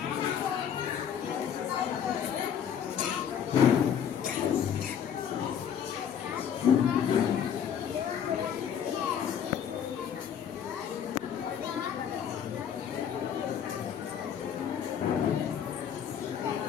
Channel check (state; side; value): quieter; right; 8.5 dB